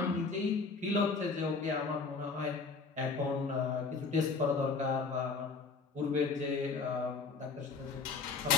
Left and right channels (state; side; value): quieter; right; 4.5 dB